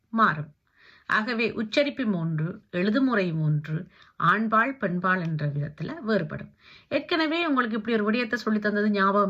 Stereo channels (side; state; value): both; identical; correlation 1.00